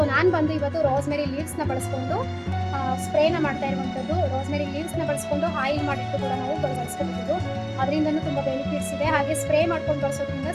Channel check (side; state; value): both; identical; correlation 1.00